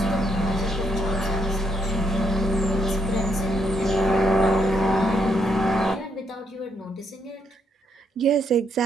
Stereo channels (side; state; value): both; normal; correlation 0.75